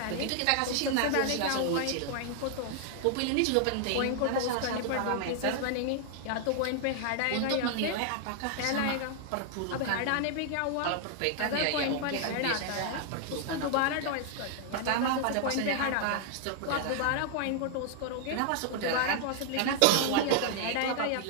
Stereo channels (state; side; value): different; both; correlation 0.00